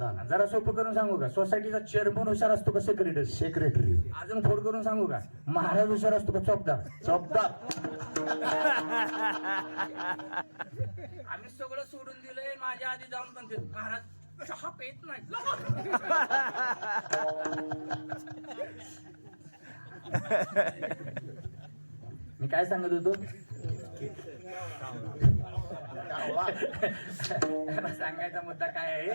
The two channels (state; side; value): inverted; both; correlation -1.00